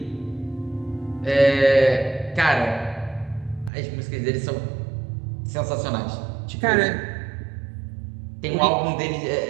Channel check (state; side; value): drops out; left; at 3.7 s